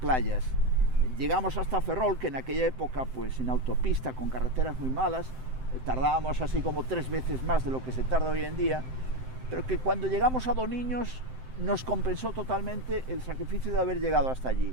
Llegamos hasta Ferrol, que en aquella época, pues en autopista, con carreteras muy malas, tardábamos así como 3 veces más de lo que se tarda hoy en día, pero que cuando llegamos a Doniños nos compensó totalmente el sacrificio de haber llegado hasta allí.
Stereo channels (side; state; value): left; late; 7.8 ms